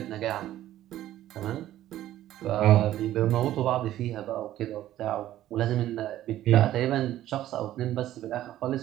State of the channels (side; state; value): left; quieter; 13.4 dB